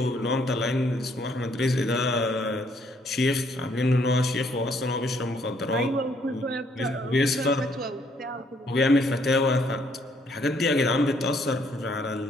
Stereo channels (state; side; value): normal; both; correlation 0.68